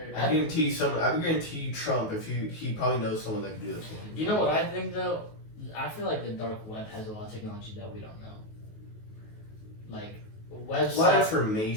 I guarantee Trump, if he probably knows someone that can do that for him. You know what I think though? I feel like the dark web has a lot of technology that we don't know. Like websites. A lot of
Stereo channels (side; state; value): right; late; 19 ms